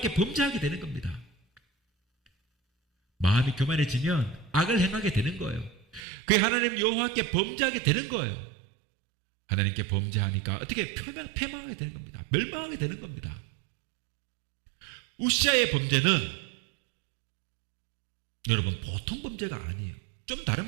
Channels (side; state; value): left; drops out; at 6.0 s